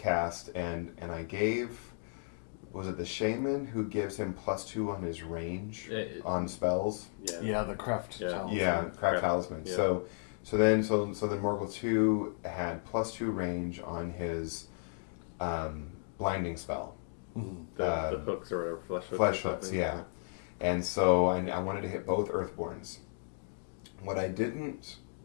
and I gave, was it the Shaman who gives him +2 on his range on spells? Yeah, the Craft Talisman. Yeah, Craft Talisman. Yeah. So then Morgul 2 had +2 range on his blinding spell. The hooks or whatever, Flesh hooks, yeah. And so I wanted to hit both Earthborns. What I didn't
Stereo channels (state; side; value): silent; right; digital silence